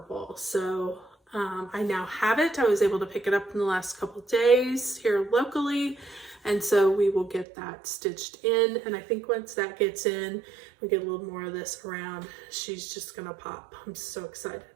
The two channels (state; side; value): drops out; left; at 7.5 s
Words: So I now have it. I was able to pick it up in the last couple of days here locally. And so we will get that stitched in. And I think once that gets in, we get a little more of this around, she's just gonna pop. I'm so excited.